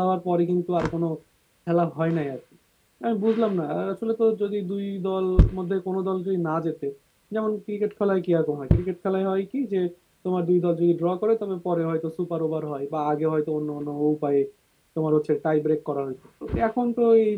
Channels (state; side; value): identical; both; correlation 1.00